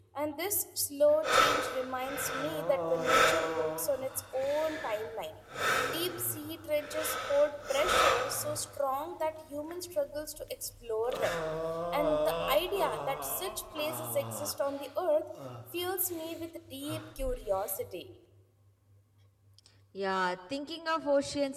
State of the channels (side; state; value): both; identical; correlation 1.00